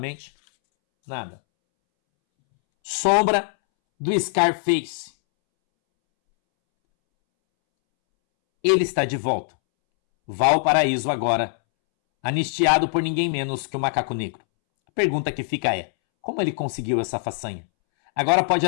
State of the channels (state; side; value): silent; right; 64 dB below the other